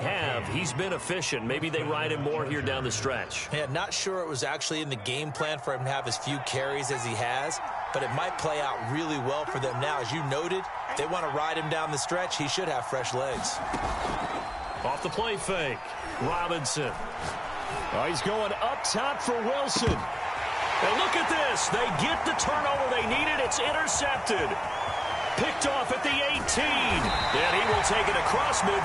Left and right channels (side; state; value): both; identical; correlation 1.00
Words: he's been efficient. Maybe they ride him more here down the stretch. Yeah, not sure it was actually in the game plan for him to have as few carries as he has, but it might play out really well for them now. As you noted, if they want to ride him down the stretch, he should have fresh legs. Off the play fake, Robinson. Oh, he's going up top for Wilson. And look at this. They get the turnover they needed. It's intercepted. Picked off at the 18. And he will take it across